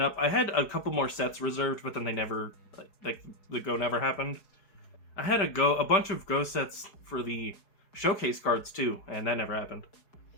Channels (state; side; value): late; right; 4.8 ms